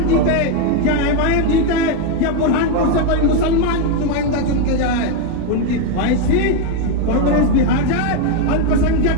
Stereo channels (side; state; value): both; different; correlation 0.02